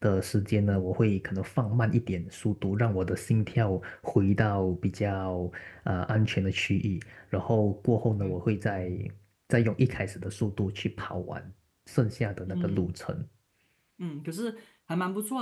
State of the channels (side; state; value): both; identical; correlation 1.00